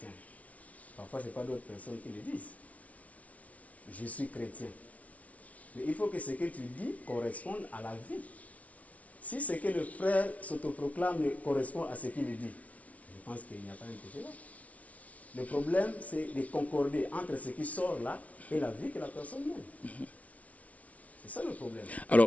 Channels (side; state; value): right; late; 0.068 ms